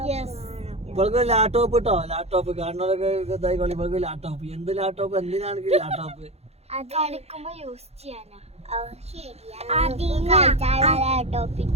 ഇവൾക്ക് ലാപ്ടോപ്പ് കിട്ടോ? ലാപ്ടോപ്പ് കാണുന്നവരൊക്കെ ഇതായിക്കോളി. ഇവൾക്ക് ലാപ്ടോപ്പ്. എന്ത് ലാപ്ടോപ്പ്? എന്തിനാണ് ലാപ്ടോപ്പ്? കളിക്കുമ്പോ യൂസ് ചെയ്യാനാ. ലാപ്ടോപ്പ്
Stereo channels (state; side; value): late; left; 0.30 ms